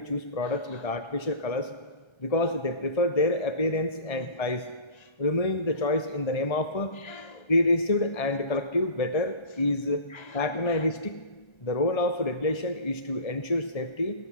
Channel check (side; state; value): right; late; 1.3 ms